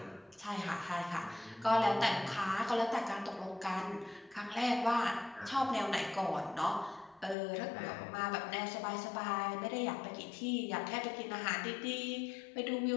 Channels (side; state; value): right; drops out; at 7.4 s